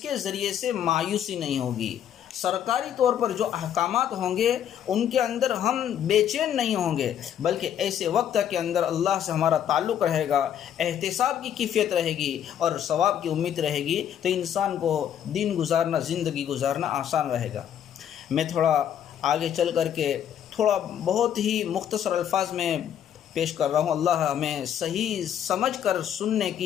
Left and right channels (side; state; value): right; quieter; 9.6 dB